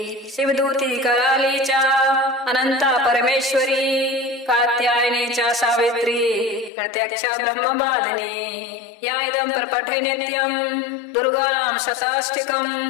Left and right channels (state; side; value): drops out; right; at 6.7 s